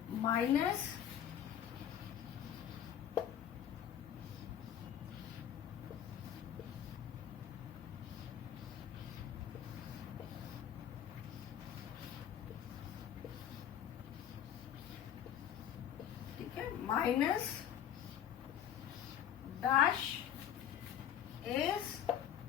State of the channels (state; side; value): quieter; right; 9.9 dB